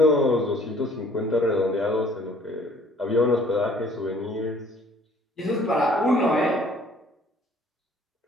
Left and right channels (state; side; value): normal; both; correlation 0.57